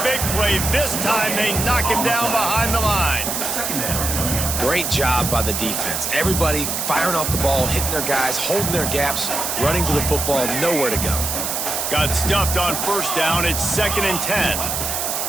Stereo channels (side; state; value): right; noise; hiss, 2 dB below the sound